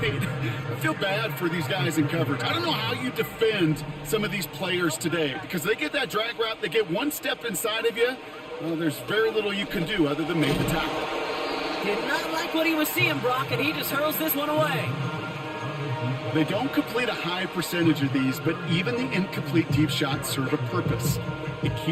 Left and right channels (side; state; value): both; identical; correlation 1.00